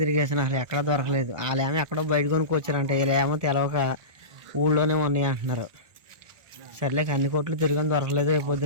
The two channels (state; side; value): late; left; 1.4 ms